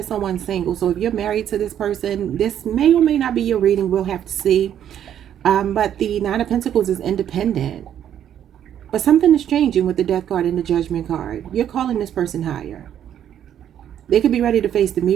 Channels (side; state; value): left; quieter; 10.1 dB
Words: someone single. So if you're married to this person, this may or may not be your reading. We'll have to see. But the Nine of Pentacles is independent. But something is changing with the Death card and the Judgment card. You're calling this person higher. They could be ready to face the